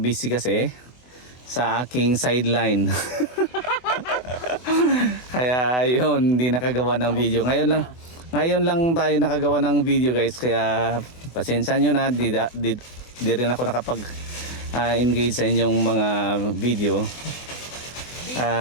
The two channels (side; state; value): right; late; 24 ms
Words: kasi sa aking sideline. Kaya yun, hindi nakagawa ng video. Ngayon lang tayo nakagawa ng video guys. Kaya pasensya nyo na, di rin ako nakapag engage sa inyong mga video.